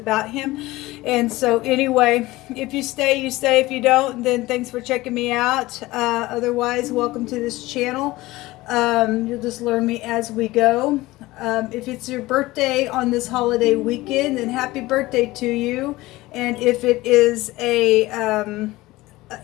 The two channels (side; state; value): right; quieter; 18.9 dB